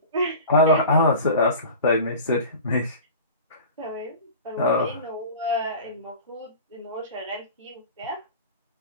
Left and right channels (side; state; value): both; inverted; correlation -0.37